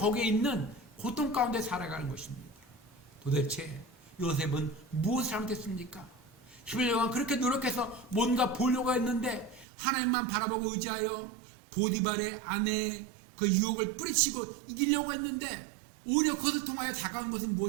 있는 고통 가운데 살아가는 것입니다. 도대체 요셉은 무엇을 잘못했습니까? 11년간 그렇게 노력해서 뭔가 보려고 했는데 하나님만 바라보고 의지하여 보디발의 아내의 그 유혹을 뿌리치고 이기려고 했는데 오히려 그것을 통하여 다가온 것은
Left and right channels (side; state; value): left; drops out; at 9.7 s